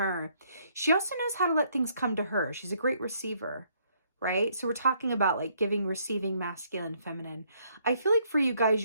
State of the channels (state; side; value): inverted; both; correlation -0.69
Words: she also knows how to let things come to her. She's a great receiver, right? So we're talking about like giving, receiving, masculine, feminine. I feel like for you guys,